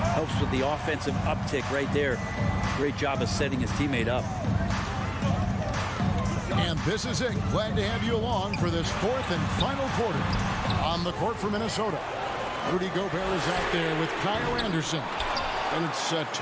helps with the offensive uptick right there. Great job of setting his teammate up. And this is it. Glad to have you along for this 4th and final quarter. On the court for Minnesota, Rudy Gobert is out there with Kyle Anderson. And it's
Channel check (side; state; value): both; identical; correlation 1.00